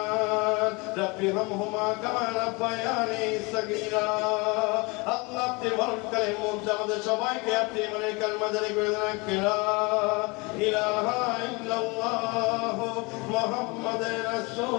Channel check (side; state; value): right; quieter; 27.3 dB